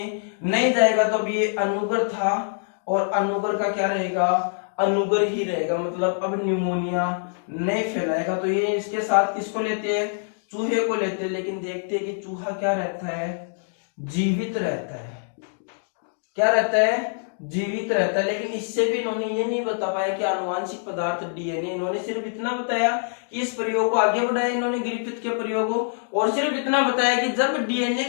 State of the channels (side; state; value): right; silent; digital silence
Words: नहीं जाएगा, तो अब ये अनुगर था और अनुगर का क्या रहेगा? अनुगर ही रहेगा, मतलब अब निमोनिया नहीं फैलाएगा। तो ये इसके साथ किसको लेते हैं? चूहे को लेते हैं। लेकिन देखते हैं कि चूहा क्या रहता है? जीवित रहता है। क्या रहता है? जीवित रहता है। लेकिन इससे भी इन्होंने ये नहीं बता पाया कि आनुवांशिक पदार्थ डीएनए। इन्होंने सिर्फ इतना बताया कि इस प्रयोग को आगे बढ़ाया इन्होंने, ग्रिफिथ के प्रयोग को, और सिर्फ इतना बताया कि जब डीएनए